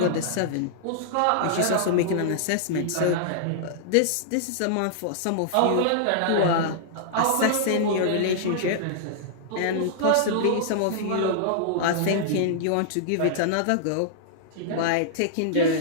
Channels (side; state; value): both; different; correlation -0.02